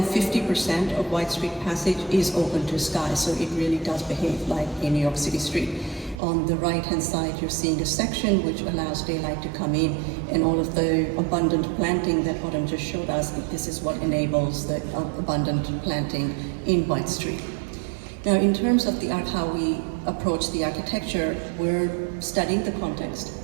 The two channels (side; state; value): left; drops out; at 6.2 s